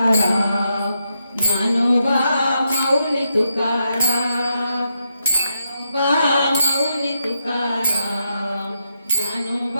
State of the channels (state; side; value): inverted; both; correlation -0.83